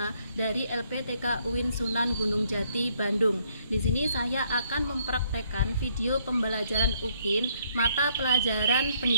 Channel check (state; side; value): inverted; both; correlation -0.68